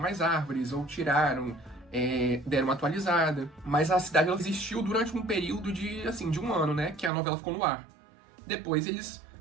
árvores ou tiraram, deram uma atualizada. Mas a cidade ela existiu durante um período de, assim, de um ano, né, que a novela ficou no ar. Depois eles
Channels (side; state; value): left; drops out; at 7.1 s